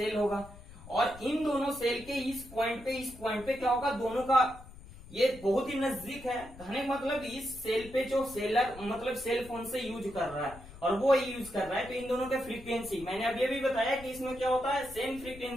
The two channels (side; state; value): left; noise; rumble, 17 dB below the sound